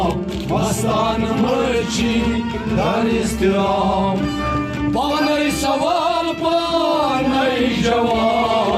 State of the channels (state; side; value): identical; both; correlation 1.00